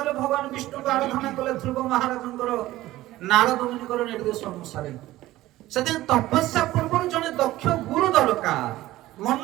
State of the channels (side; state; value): left; quieter; 16.3 dB